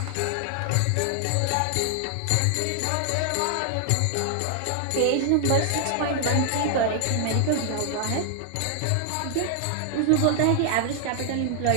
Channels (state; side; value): different; both; correlation 0.00